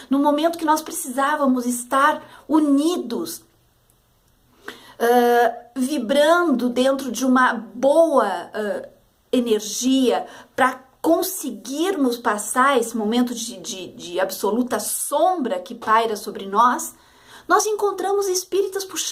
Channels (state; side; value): identical; both; correlation 1.00